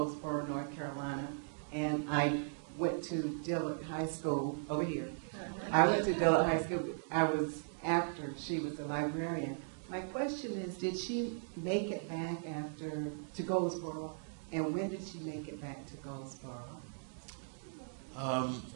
North Carolina, and I went to Dillard High School over here. I went to Dillard High School. I was after she was a librarian. My question is, did she make it back to Goldsboro, and when did she make it back to Goldsboro?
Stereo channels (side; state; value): left; silent; digital silence